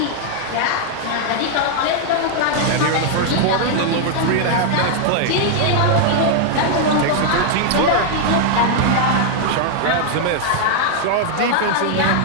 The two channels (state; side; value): different; both; correlation 0.00